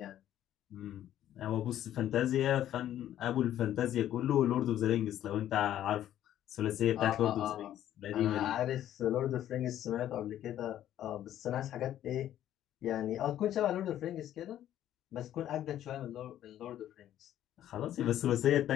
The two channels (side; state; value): right; quieter; 11.8 dB